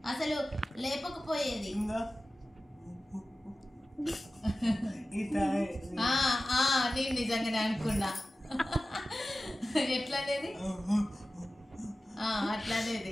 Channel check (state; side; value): normal; both; correlation 0.95